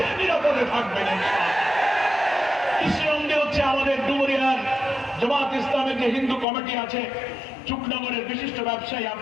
নিরাপদে থাকবেন। কৃষ্ণনন্দী হচ্ছে আমাদের ডুমুরিয়ার জামাত ইসলামের যে হিন্দু কমিটি আছে, চুকনগরের বিশিষ্ট ব্যবসায়ী,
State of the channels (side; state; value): right; drops out; at 6.5 s